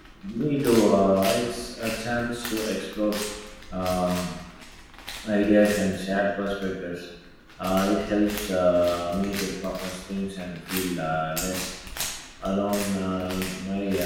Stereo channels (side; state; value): both; identical; correlation 1.00